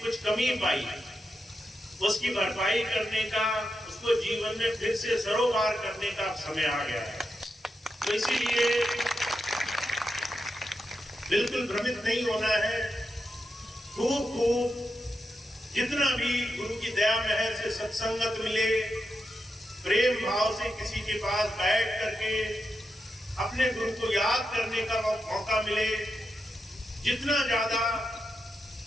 कुछ कमी पाई उसकी भरपाई करने का, उसको जीवन में फिर से सरोकार करने का समय आ गया है। तो इसीलिए बिल्कुल भ्रमित नहीं होना है। खूब जितना भी गुरु की दया मेहर से सत्संगत मिले, प्रेम भाव से किसी के पास बैठ करके अपने गुरु को याद करने का मौका मिले, जितना ज्यादा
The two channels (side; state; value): both; normal; correlation 0.87